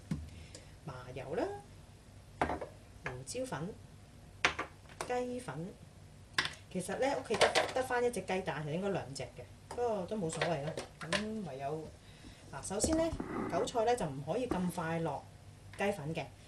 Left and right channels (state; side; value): identical; both; correlation 1.00